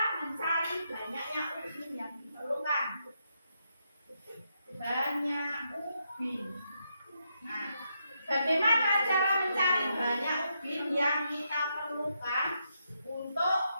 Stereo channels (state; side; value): inverted; both; correlation -0.80